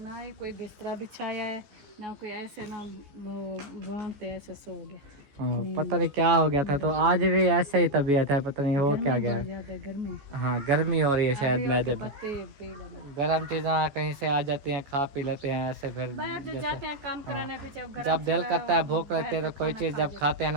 ही कोई बिस्तरा बिछाया है ना कोई, ऐसे ना वहाँ पे ऐसे सो गया। हाँ पता नहीं क्या हो गया था। तो आज भी ऐसे ही तबीयत है, पता नहीं हो क्या गया है। गर्मी, हाँ गर्मी हो रही है शायद मैदे में। गर्म चीज़ें कहीं से आ जाती हैं, खा पी लेते हैं ऐसे। फिर जाते हैं काम कराने पे, जब दिल करता है भूख लगती है तो कोई चीज़ जब खाते हैं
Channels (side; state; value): left; late; 14 ms